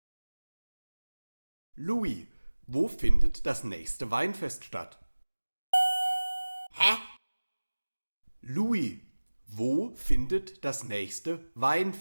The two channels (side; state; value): both; inverted; correlation -1.00